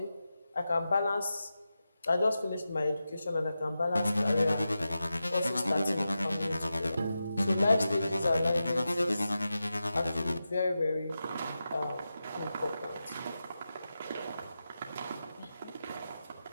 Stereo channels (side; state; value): both; inverted; correlation -0.91